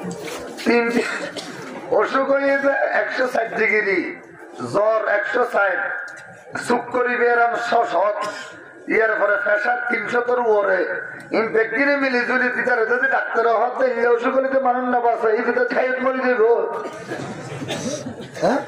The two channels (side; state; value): both; identical; correlation 1.00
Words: অসুখ হয়ে 160 ডিগ্রি জ্বর 160 সুখ করি বেরাম 100 ইয়ার পরে প্রেশার 300 উপরে ইনফেক্টিনে মিলি জুলি ভিতরে যদি ডাক্তার হতে অসুখ হলে মানুষ না বাঁচে এই ভিতরে খাইত মরি দেব হ্যাঁ